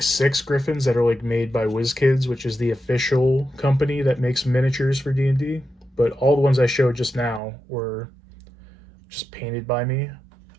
6 griffins that are like made by WizKids, which is the official company that makes miniatures for D&D. But all the ones I showed just now were just painted by me.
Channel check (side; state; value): left; drops out; at 7.4 s